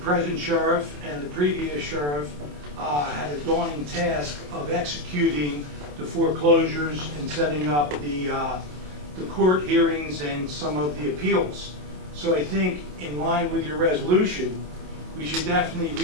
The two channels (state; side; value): late; left; 27 ms